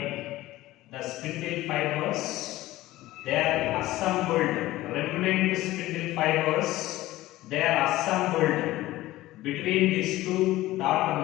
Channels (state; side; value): quieter; right; 16.7 dB